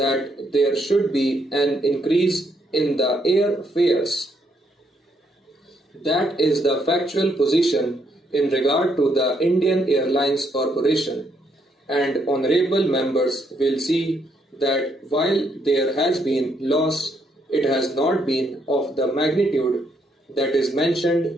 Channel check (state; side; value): normal; both; correlation 0.74